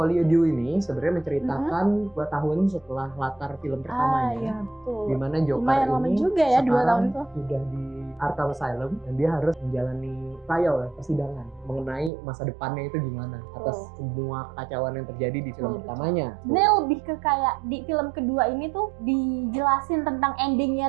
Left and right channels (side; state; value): left; drops out; at 12.1 s